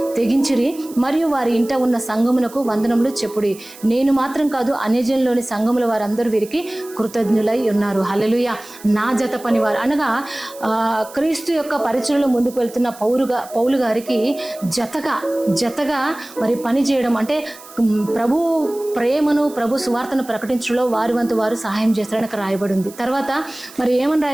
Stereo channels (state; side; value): noise; right; hiss, 19 dB below the sound